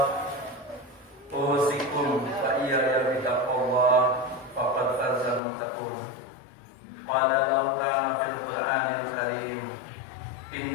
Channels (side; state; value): right; drops out; at 5.4 s